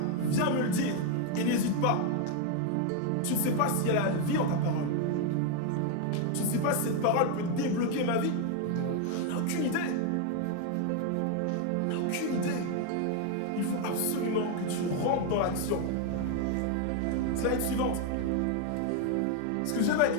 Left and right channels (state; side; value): different; both; correlation 0.01